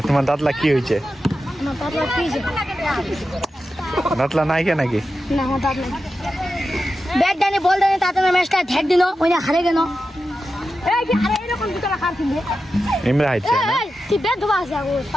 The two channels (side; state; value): both; normal; correlation 0.91